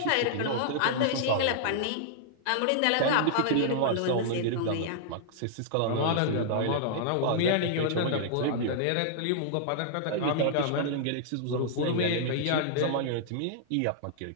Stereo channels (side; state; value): both; different; correlation -0.01